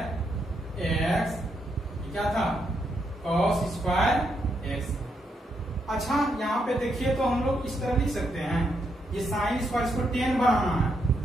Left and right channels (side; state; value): both; normal; correlation 0.79